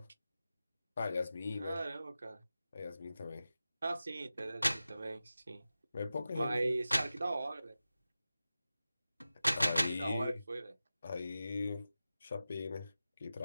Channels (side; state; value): both; inverted; correlation -0.93